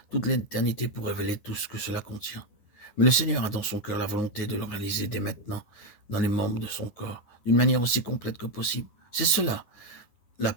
toute l'éternité pour révéler tout ce que cela contient. Mais le Seigneur a dans son cœur la volonté de le réaliser dès maintenant, dans les membres de son corps, d'une manière aussi complète que possible. C'est cela, la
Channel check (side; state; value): right; late; 10 ms